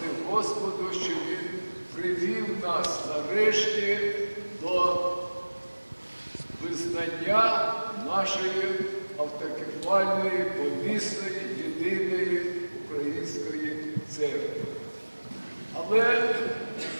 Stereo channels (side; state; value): both; inverted; correlation -1.00